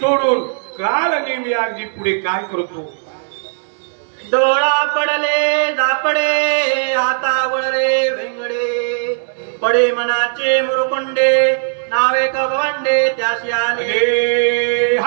कालनेमी अगदी पुढे काय करतो. डोळा पडले झापडे हातावळे वेंगडे पडे मनाचे मुरुकुंडे नावे कवंडे त्याशी आले.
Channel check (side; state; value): left; silent; digital silence